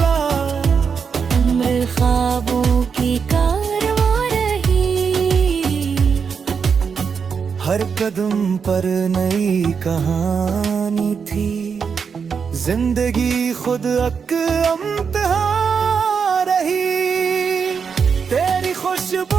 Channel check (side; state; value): left; quieter; 6.1 dB